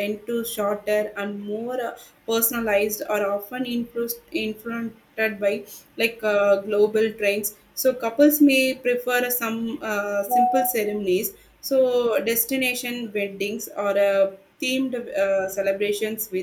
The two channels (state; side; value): identical; both; correlation 1.00